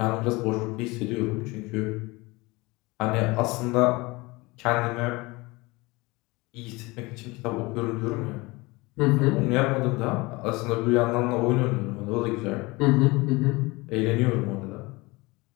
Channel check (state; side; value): quieter; right; 23.5 dB